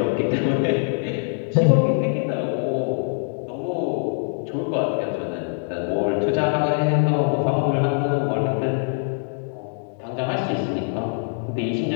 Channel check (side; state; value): right; silent; 60 dB below the other